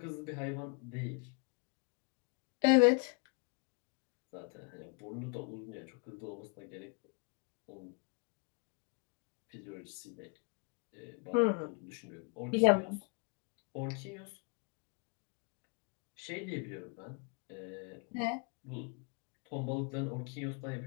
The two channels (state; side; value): quieter; right; 31.8 dB